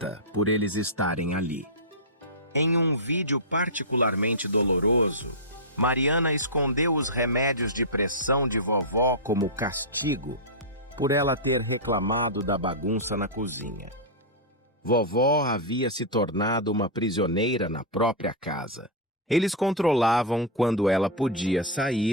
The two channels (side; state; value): both; normal; correlation -0.09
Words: por eles estarem ali. Em um vídeo particularmente doloroso, Mariana escondeu os remédios de pressão de vovó como castigo por ela ter reclamado da bagunça na cozinha. Vovó havia se tornado uma prisioneira na própria casa. Eles controlavam quando ela podia